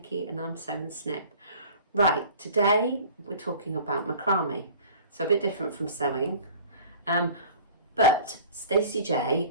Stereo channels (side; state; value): both; inverted; correlation -0.45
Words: and I'm Sew&Snip. Right, today we're talking about macrame. So a bit different from sewing. But Stacey